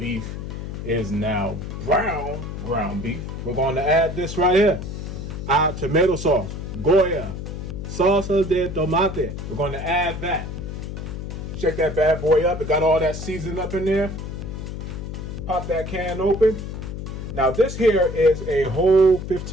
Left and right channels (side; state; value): left; noise; hum, 7 dB below the sound